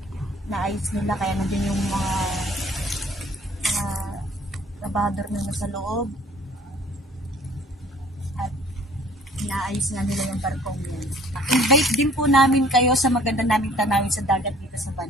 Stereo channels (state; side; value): normal; both; correlation 0.54